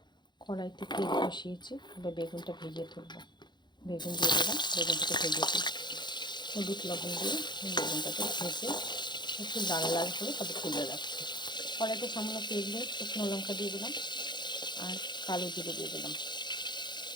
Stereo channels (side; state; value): right; late; 0.21 ms